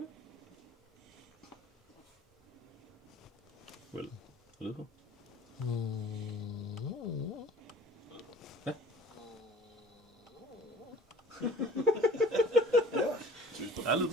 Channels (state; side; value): normal; both; correlation 0.47